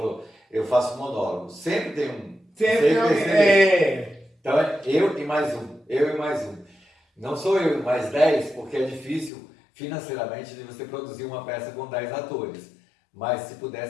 eu faço monólogo. Sempre tem um. Sempre tem. Então é eu e mais um. Eu e mais um. Não sou eu e mais 10, porque é difícil financeiramente de você produzir uma peça com 10 atores. Mas se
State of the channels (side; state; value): right; drops out; at 9.3 s